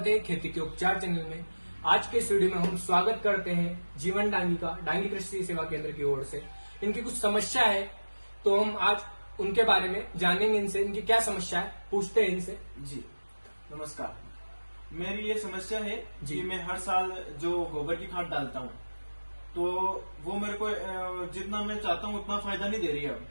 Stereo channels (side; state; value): both; inverted; correlation -1.00